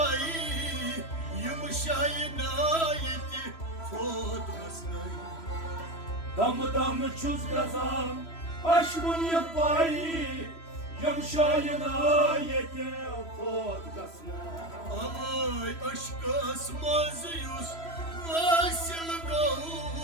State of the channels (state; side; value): late; right; 3.0 ms